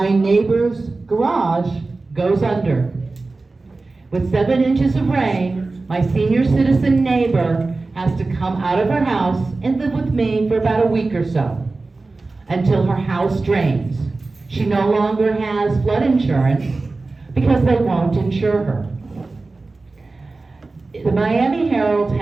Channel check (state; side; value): quieter; left; 3.5 dB